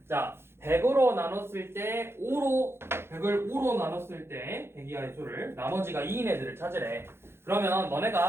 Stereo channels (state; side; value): late; left; 0.12 ms